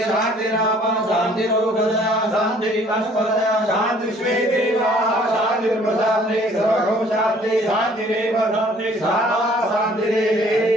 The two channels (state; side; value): normal; both; correlation 0.57